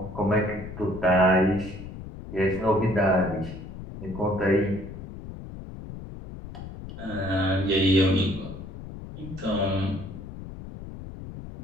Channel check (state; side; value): noise; left; rumble, 12 dB below the sound